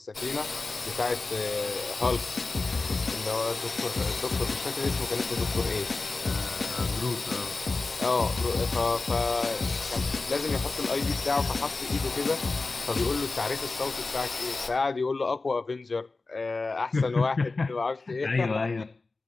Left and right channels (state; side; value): quieter; right; 3.7 dB